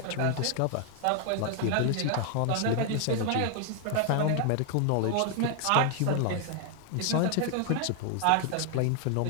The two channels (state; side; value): different; both; correlation 0.00